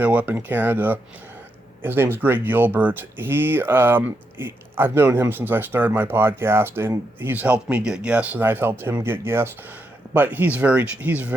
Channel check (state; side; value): normal; both; correlation 0.82